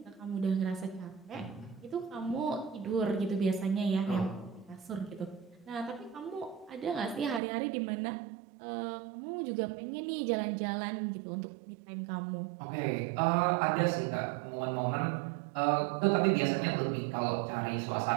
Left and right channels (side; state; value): left; drops out; at 7.4 s